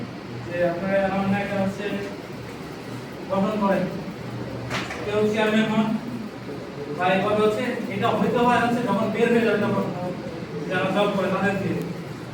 যে আপনারা এমন একটা হচ্ছে গঠন করেন, কেউ চেয়ারম্যান হন বা এভাবে হচ্ছে, এটা হইতে হয় হচ্ছে যখন বের হয়ে যাবে, তখন যারা জব করে তাদের দিয়ে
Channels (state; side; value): identical; both; correlation 1.00